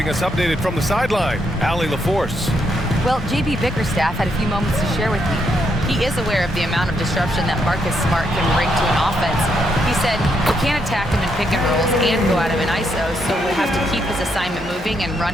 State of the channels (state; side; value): normal; both; correlation 0.77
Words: us updated from the sideline, Allie LaForce. Well, JB Bickerstaff had a few moments to share with me. He is aware of the amount of disruption that Marcus Smart can bring to an offense. He said we can't attack him in pick and rolls and go at him in ISO, so we'll have to keep his assignment moving and run